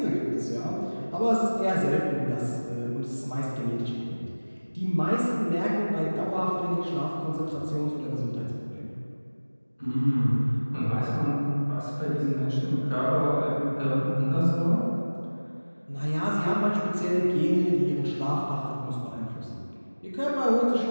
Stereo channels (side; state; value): both; inverted; correlation -1.00